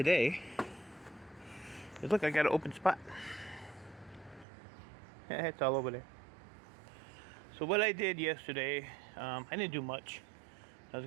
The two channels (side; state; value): left; drops out; at 4.5 s